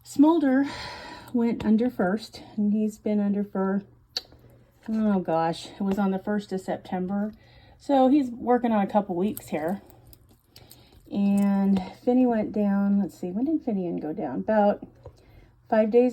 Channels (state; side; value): identical; both; correlation 1.00